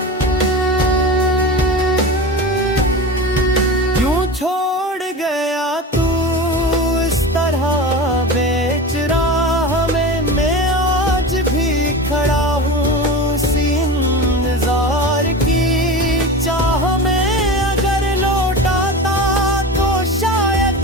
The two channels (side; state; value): both; normal; correlation 0.28